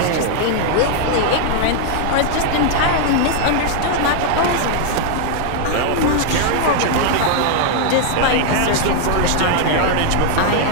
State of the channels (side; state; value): both; different; correlation 0.00